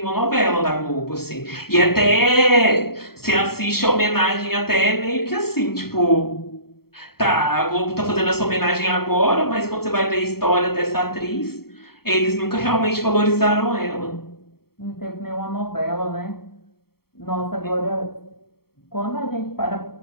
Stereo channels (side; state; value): right; late; 0.95 ms